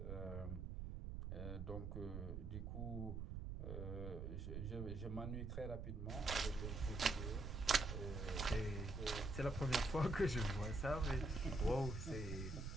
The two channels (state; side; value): noise; right; rumble, 5 dB below the sound